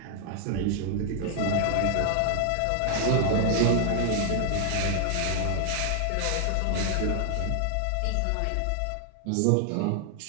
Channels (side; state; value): both; different; correlation 0.00